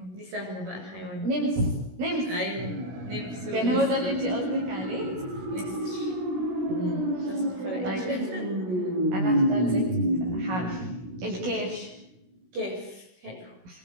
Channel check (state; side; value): late; left; 16 ms